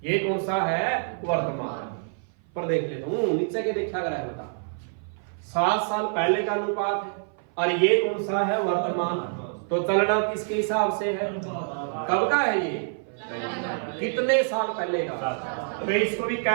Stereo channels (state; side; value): silent; left; 57 dB below the other